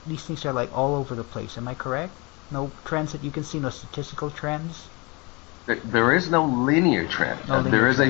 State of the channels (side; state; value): right; quieter; 27.6 dB